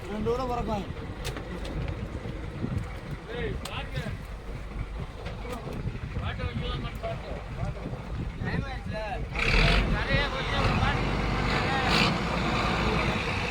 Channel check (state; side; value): identical; both; correlation 1.00